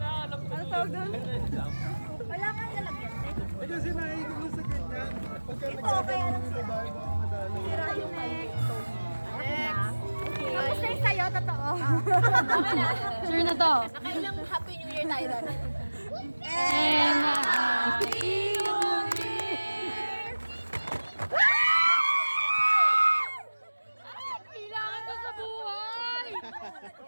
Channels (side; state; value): both; inverted; correlation -1.00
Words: Ano tawag doon? Wala nga lalagyan. Eh kasi naiigil mo sa ganyan. Pagka Ito, kaya lang sa bahay, baka madali. sira yung next. Tapos na yung sa'yo, totoo. Sure na to. Nakailang Happy New Year tayo doon. And a happy New Year. Ay, kailangan ko sa buhay.